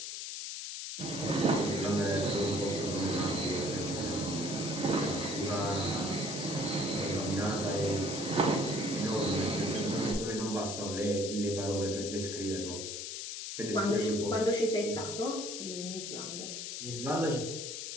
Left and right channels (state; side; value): noise; left; hiss, 6 dB below the sound